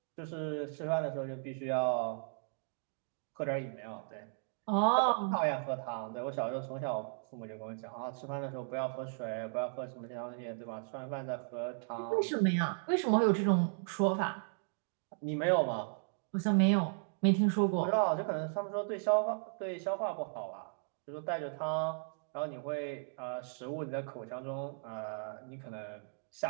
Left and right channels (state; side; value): silent; left; digital silence